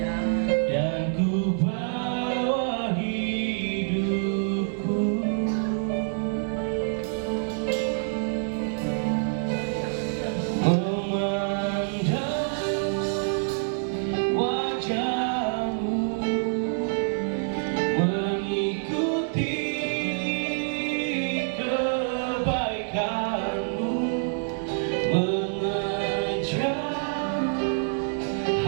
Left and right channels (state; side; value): silent; left; digital silence